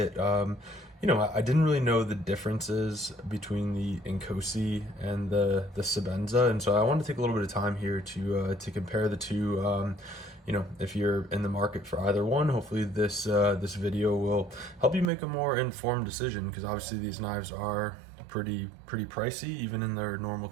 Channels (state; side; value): drops out; left; at 15.1 s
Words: I didn't really know the differences between the Inkosi and the Sebenza. And so I wanted to take a little bit of time here to compare the two. If you're in the market for either one, hopefully this video will help you make a more informed decision, because obviously these knives are pretty pricey even in their normal